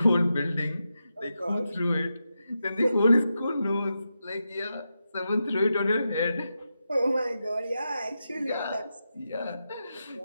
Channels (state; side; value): inverted; both; correlation -0.88